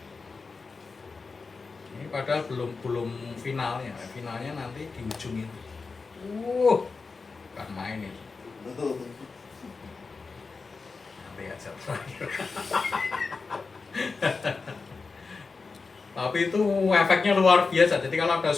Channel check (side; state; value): right; quieter; 4.4 dB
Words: Ini padahal belum finalnya. Finalnya nanti di ujung itu. Bukan main itu. Nanti aja terakhir. Tapi itu efeknya luar biasa. Jadi kalau ada